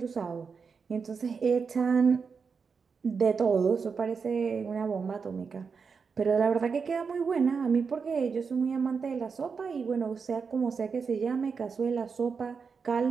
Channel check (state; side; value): quieter; left; 5.5 dB